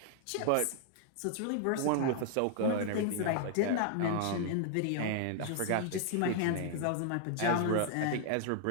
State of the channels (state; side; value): different; both; correlation 0.00